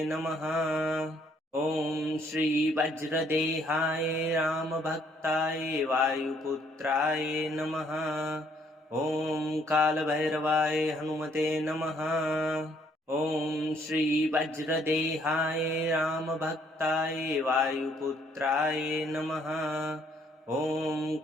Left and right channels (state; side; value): normal; both; correlation 0.66